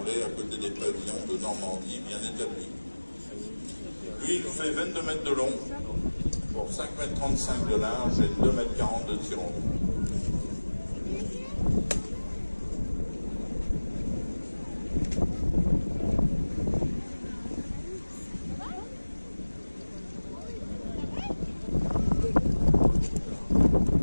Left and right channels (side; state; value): both; inverted; correlation -1.00